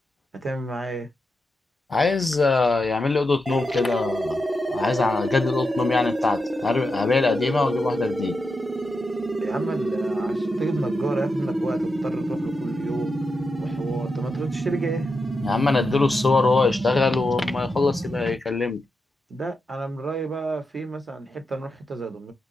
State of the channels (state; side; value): normal; both; correlation 0.87